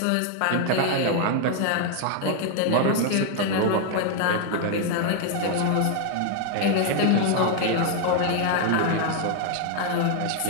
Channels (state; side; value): different; both; correlation 0.00